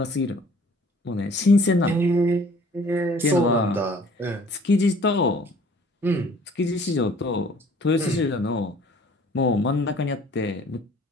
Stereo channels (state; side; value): normal; both; correlation 0.53